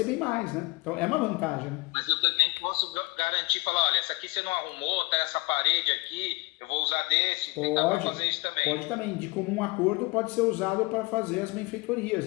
bem mais, né? Então, é uma vantagem, né? Mas eu também posso garantir, falar, olha, essa aqui você não arrumou, tá essa parede aqui, eu vou usar desse, tentar pra fazer isso também. Pode também, de comum acordo pode ser usado para fazer as benfeitorias,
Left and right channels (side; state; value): right; quieter; 24.8 dB